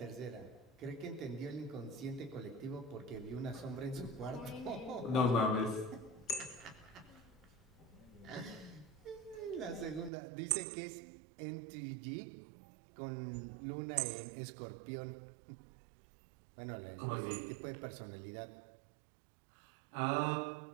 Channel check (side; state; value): left; drops out; at 10.1 s